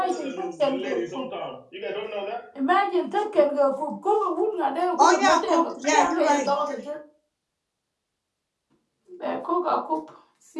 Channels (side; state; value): both; identical; correlation 1.00